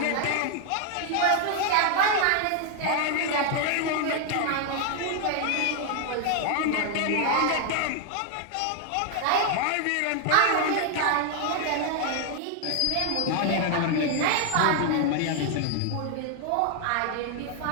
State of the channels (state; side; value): different; both; correlation 0.00